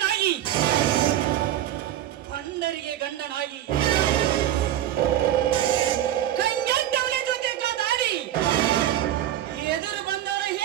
ಪಂಡರಿಗೆ ಗಂಡನಾಗಿ ಕಂಗಂಟವಳೆ ಜೊತೆ ದಾಡಿ ಎದುರು ಬಂದವರ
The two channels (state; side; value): quieter; left; 12.1 dB